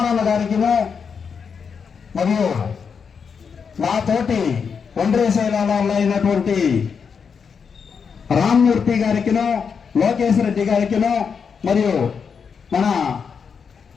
గారికిను మరియు నాతోటి ఒండ్రేసేలాలో అయినటువంటి రామ్మూర్తి గారికిను, లోకేష్ రెడ్డి గారికిను, మరియు మన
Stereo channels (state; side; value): quieter; right; 6.2 dB